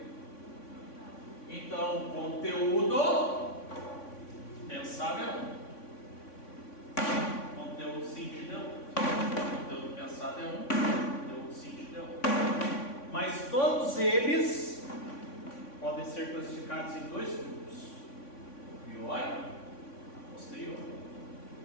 Então, conteúdo pensar é um. Conteúdo sentido é outro. Conteúdo pensado é um, conteúdo sentido é outro. Mas todos eles podem ser classificados em dois grupos: o priori e o posterior.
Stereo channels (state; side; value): late; right; 3.5 ms